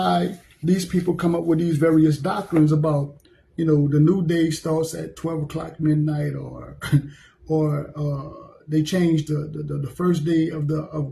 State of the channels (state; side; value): identical; both; correlation 1.00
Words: these people come up with these various doctrines about, the new day starts at 12 o'clock midnight, or they changed the first day